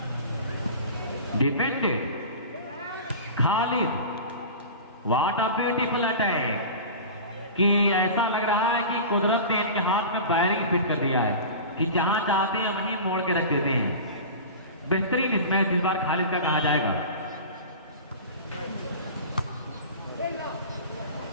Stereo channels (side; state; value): both; inverted; correlation -0.34